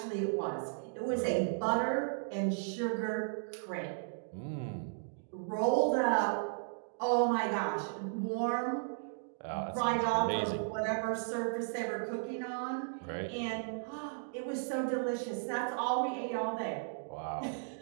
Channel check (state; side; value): silent; left; digital silence